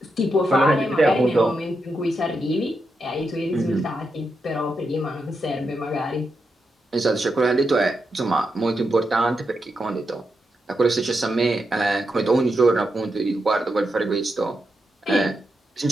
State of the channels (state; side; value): normal; both; correlation 0.85